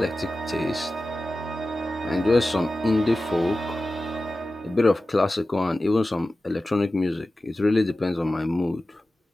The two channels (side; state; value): both; normal; correlation 0.95